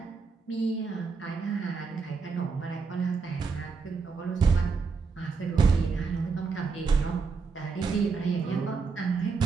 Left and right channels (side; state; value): left; quieter; 4.9 dB